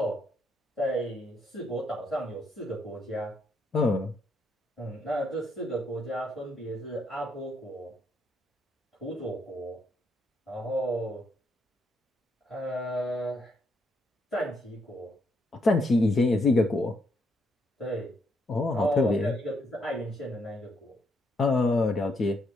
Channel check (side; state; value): both; normal; correlation 0.75